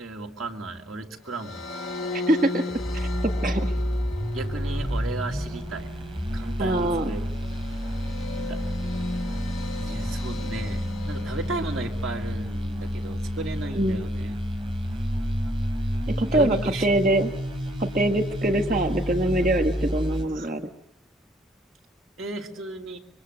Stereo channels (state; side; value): normal; both; correlation 0.68